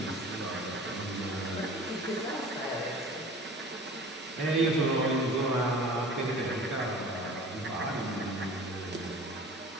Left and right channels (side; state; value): both; normal; correlation 0.42